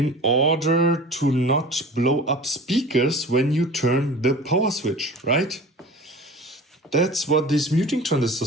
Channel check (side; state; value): both; normal; correlation 0.39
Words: order to not blow up speakers when you turn the power switch, right? That's what these muting